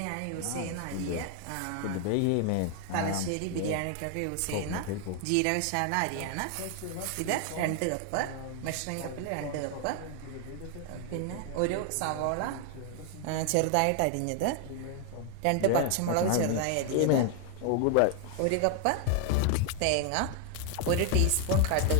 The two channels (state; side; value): different; both; correlation 0.00